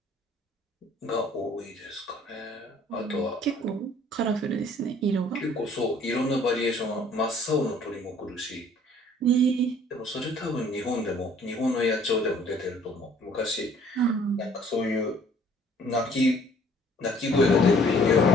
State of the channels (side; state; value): both; normal; correlation 0.57